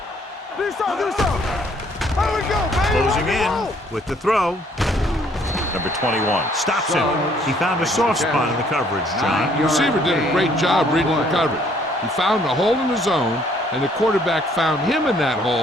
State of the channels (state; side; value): normal; both; correlation 0.63